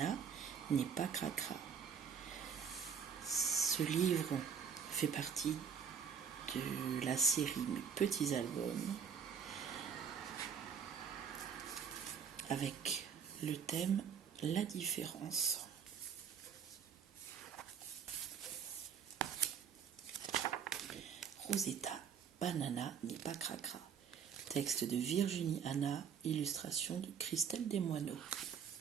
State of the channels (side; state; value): left; quieter; 7.2 dB